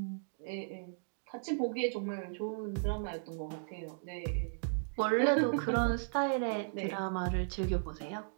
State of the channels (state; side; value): silent; left; digital silence